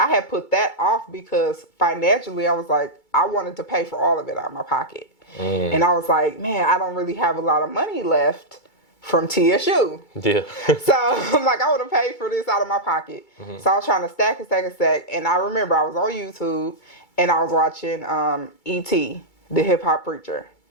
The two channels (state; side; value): late; right; 2.3 ms